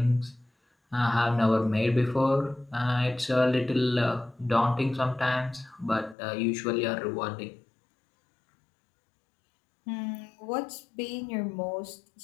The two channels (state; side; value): drops out; right; at 6.2 s